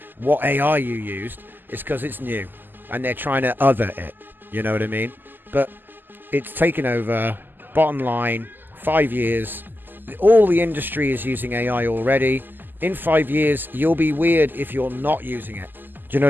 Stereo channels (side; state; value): left; late; 0.090 ms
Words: what AI you used is because it's new. And they're trying to other it. You know what I mean? But it's taken over. Bottom line, 5 years. All the industry is using AI already. In 5 years, you'll be weird if you're not using it. Do you know